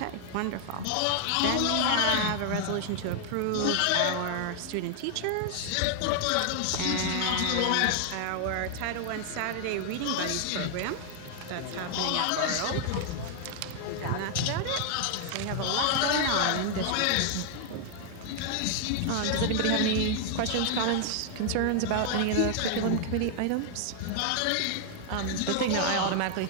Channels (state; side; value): different; both; correlation 0.00